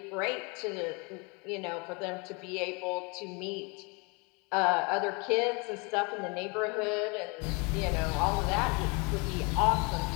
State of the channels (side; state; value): right; quieter; 30.3 dB